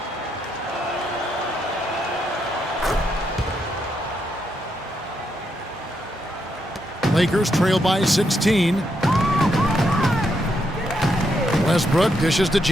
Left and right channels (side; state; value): both; normal; correlation 0.79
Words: Lakers trail by 16. Westbrook dishes to